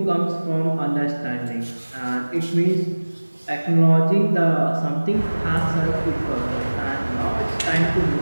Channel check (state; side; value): inverted; both; correlation -1.00